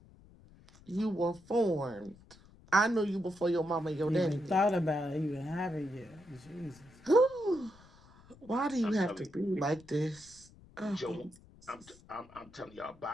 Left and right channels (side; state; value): left; noise; rumble, 24 dB below the sound